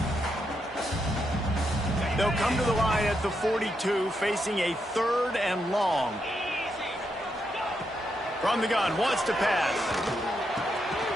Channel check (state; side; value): normal; both; correlation 0.81